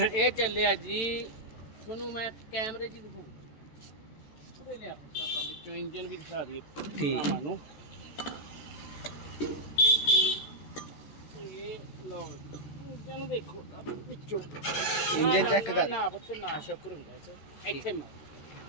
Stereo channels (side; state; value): right; late; 14 ms